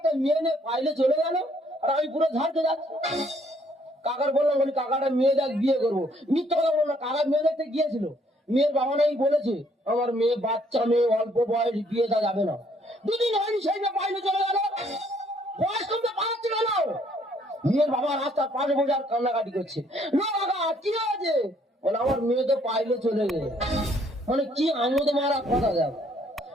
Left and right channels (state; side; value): normal; both; correlation 0.66